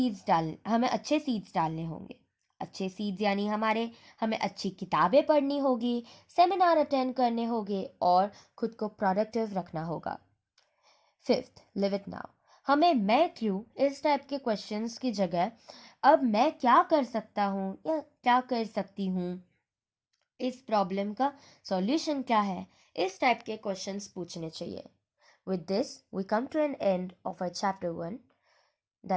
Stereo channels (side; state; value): both; identical; correlation 1.00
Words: डालने होंगे। अच्छे सीड्स यानी हमें अच्छी किताबें पढ़नी होगी, सेमिनार अटेंड करने होंगे और खुद को प्रोडक्टिव रखना होगा। Fifth, live it now. हमें मैं क्यों इस टाइप के क्वेश्चंस की जगह अब मैं क्या कर सकता हूँ या क्या कर सकती हूँ, इस प्रॉब्लम का सॉल्यूशन क्या है, इस टाइप के क्वेश्चंस पूछने चाहिए। With this we come to an end of our chapter 1,